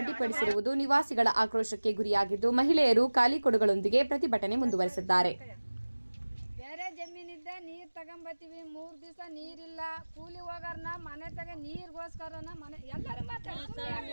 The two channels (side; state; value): both; inverted; correlation -1.00